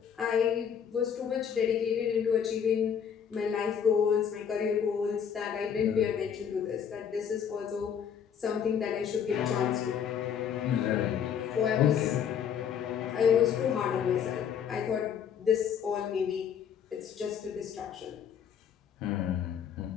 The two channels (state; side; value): quieter; right; 8.0 dB